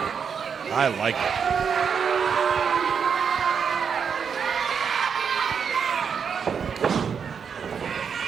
I like it.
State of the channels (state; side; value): quieter; left; 6.7 dB